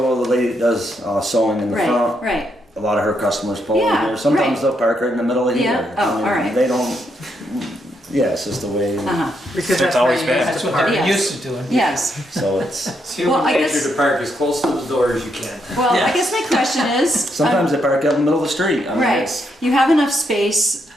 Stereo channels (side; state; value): both; normal; correlation 0.78